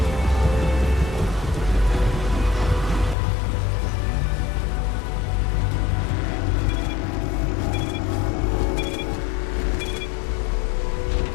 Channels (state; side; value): drops out; right; at 3.2 s